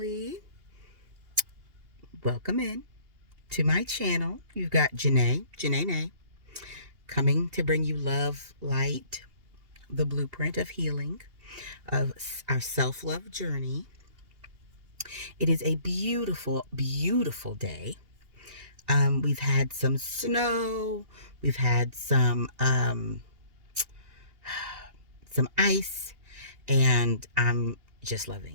Welcome in to my channel. You've got Janae, coming to bring you love, light, the blueprint of healing, of our self love journey. It is a beautiful, beautiful day. We've had some snow, we've had some ice, and I'm just loving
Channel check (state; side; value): late; left; 2.8 ms